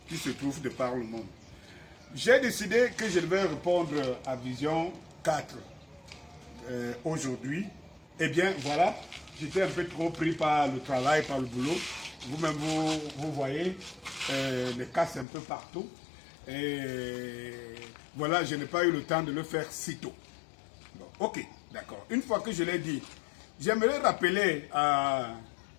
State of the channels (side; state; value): right; drops out; at 15.2 s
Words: qui se trouvent de par le monde. J'ai décidé que je vais répondre à Vision 4 aujourd'hui. Eh bien, voilà, j'étais un peu trop pris par le travail, par le boulot. Vous-même, vous voyez les casses un peu partout. Et voilà, je n'ai pas eu le temps de le faire si tôt. Bon, ok, d'accord. Une fois que je l'ai dit, j'aimerais rappeler à